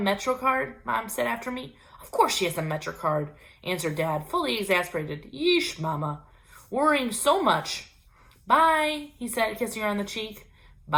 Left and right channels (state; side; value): identical; both; correlation 1.00